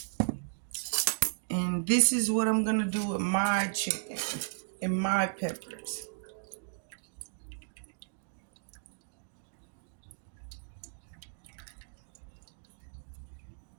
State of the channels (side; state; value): left; silent; digital silence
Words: And this is what I'm going to do with my chicken and my peppers.